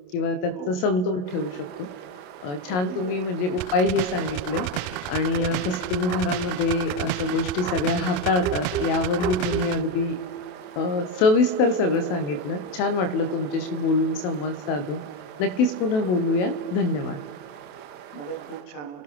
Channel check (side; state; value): right; late; 27 ms